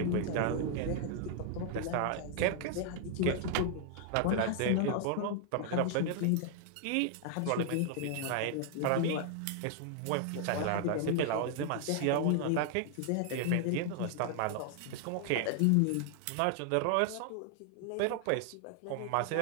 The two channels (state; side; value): different; both; correlation 0.00